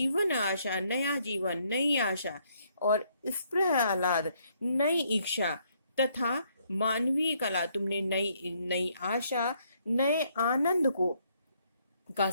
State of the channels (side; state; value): both; inverted; correlation -0.70